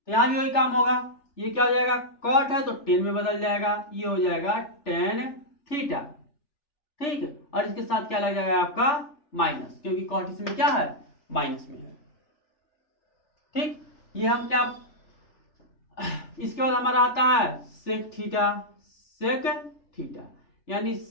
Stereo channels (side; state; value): right; late; 3.4 ms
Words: यहां भी वही काम होगा, ये क्या हो जाएगा, कॉट है तो 10 में बदल जाएगा, ये हो जाएगा tan थीटा, ठीक। और इसके साथ क्या लग जाएगा आपका माइनस, क्योंकि कॉट इसमें क्या है, माइनस में है, ठीक। ये हम क्या, इसके बाद हमारा आता है सेक थीटा, सेक थीटा यानी